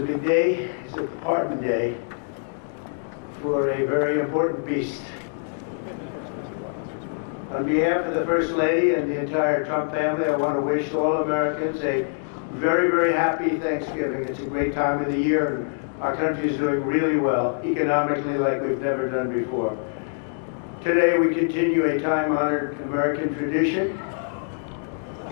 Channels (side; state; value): right; silent; digital silence